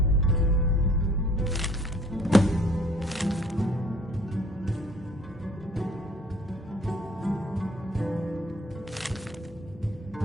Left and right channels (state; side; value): normal; both; correlation 0.56